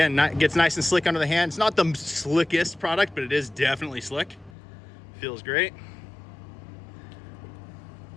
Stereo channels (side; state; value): right; drops out; at 4.5 s